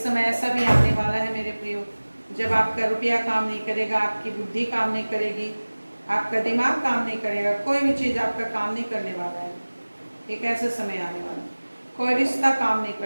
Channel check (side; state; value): both; inverted; correlation -1.00